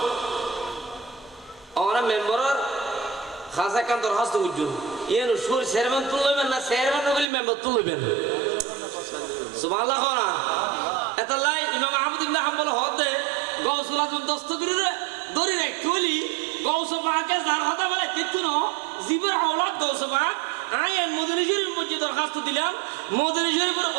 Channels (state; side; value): drops out; left; at 7.2 s